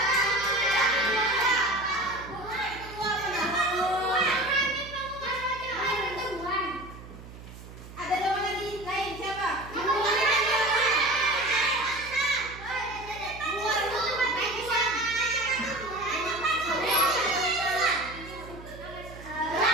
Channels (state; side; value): noise; right; hum, 16 dB below the sound